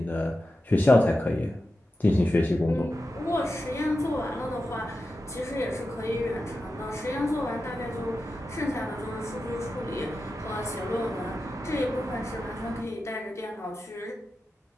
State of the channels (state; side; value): normal; both; correlation 0.91